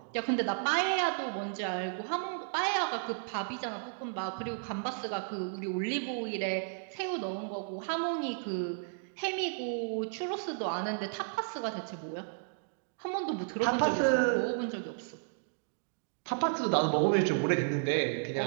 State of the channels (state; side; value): silent; left; digital silence